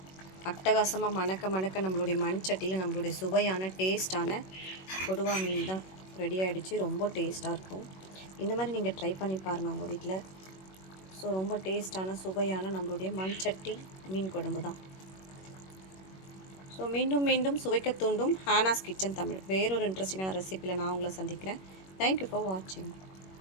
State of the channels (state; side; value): late; right; 21 ms